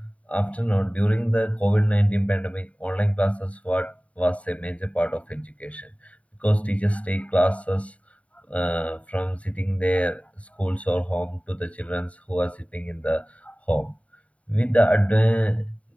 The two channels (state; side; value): late; right; 0.066 ms